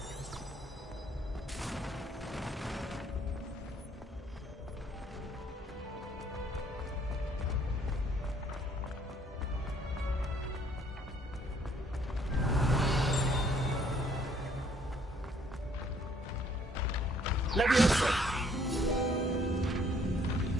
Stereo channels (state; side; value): normal; both; correlation 0.63